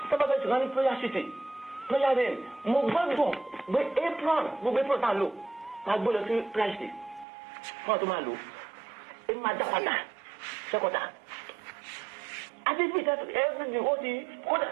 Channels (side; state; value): left; drops out; at 7.2 s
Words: tọ́pọ̀ tí wọ́n ní prayer city prayer day mo gbọ́dọ̀ gbé apron tá a lò máa gbé lọ sí prayer city fún ọ̀tún máa lò èmi máa dá padà sẹ́kọ̀tà àti bí ìtẹ́tù everything ó ti